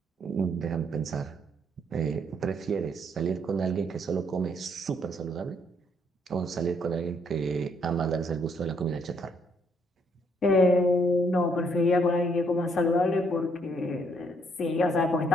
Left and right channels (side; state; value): both; normal; correlation 0.70